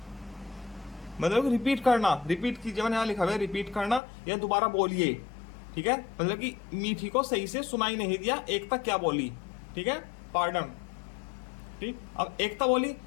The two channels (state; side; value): drops out; right; at 4.0 s